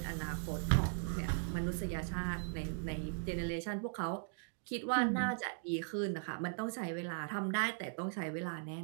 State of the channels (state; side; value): silent; left; digital silence